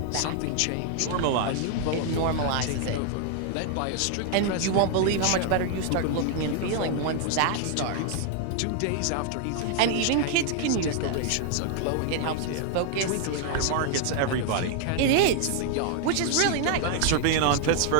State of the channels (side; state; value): both; different; correlation 0.00